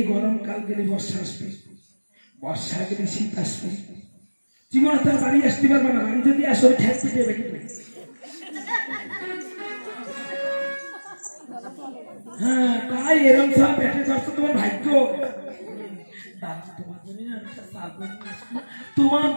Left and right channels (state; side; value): inverted; both; correlation -1.00